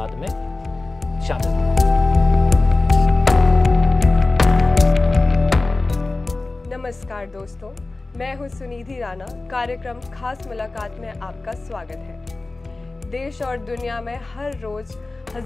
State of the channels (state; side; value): quieter; right; 3.3 dB